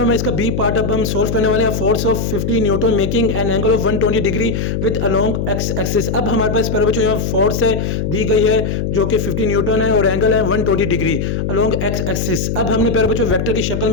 है, इसका बी पार्ट अब हम सोल्व करने वाले हैं। Force of 50 Newton making an angle of 120 degree with along x axis. अब हमारे पास प्यारे बच्चों यहाँ फोर्स है दी गई है जो कि 50 न्यूटन है और एंगल है 120 डिग्री अलोंग एक्स एक्सिस। अब हमने प्यारे बच्चों वेक्टर की शक्ल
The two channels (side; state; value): left; noise; hum, 1 dB below the sound